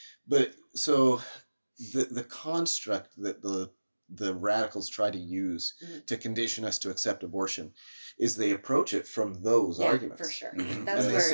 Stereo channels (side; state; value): both; inverted; correlation -1.00